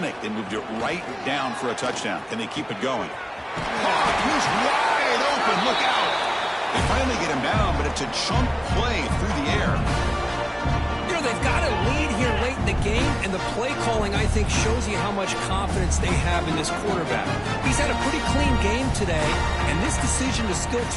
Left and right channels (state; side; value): identical; both; correlation 1.00